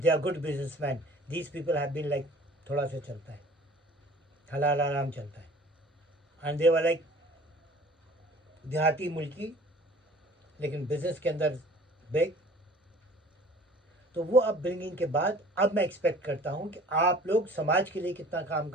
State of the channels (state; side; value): normal; both; correlation 0.48